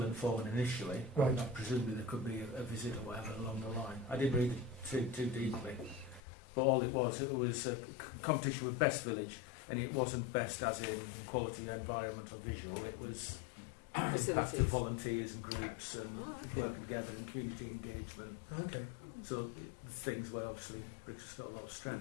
the form in initially. Right. Presumably there could be a visit or whatever along the line. I didn't read it too deeply, but all it was a competition with Best Village, and it wasn't best as in quality, environment or visual. It was impact of volunteers and groups and work together and community engagement. Okay. So things where obviously Brixworth's got a lot of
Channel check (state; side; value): drops out; right; at 6.2 s